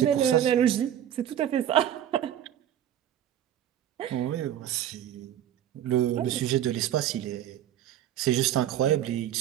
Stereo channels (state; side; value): quieter; left; 11.0 dB